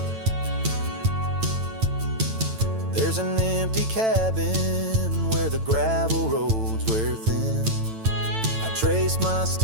There's an empty cabin where the gravel roads wear thin. I trace my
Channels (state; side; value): late; left; 9.0 ms